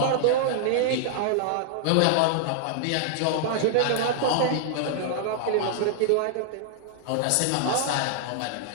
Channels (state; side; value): different; both; correlation -0.01